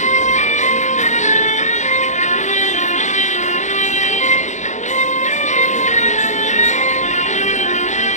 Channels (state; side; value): late; right; 0.35 ms